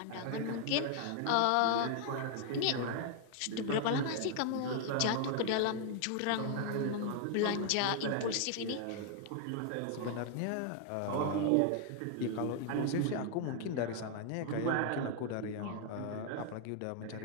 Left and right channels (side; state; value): both; different; correlation 0.00